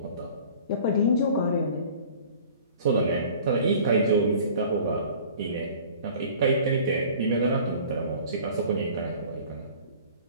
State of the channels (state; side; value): inverted; both; correlation -0.46